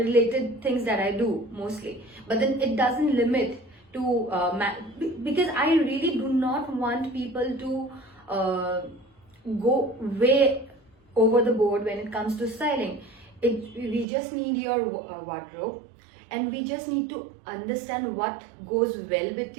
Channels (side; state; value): left; drops out; at 14.1 s